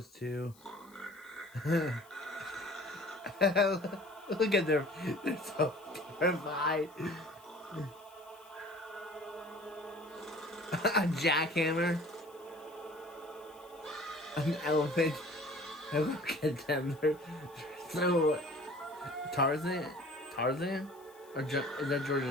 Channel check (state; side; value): noise; left; hiss, 26 dB below the sound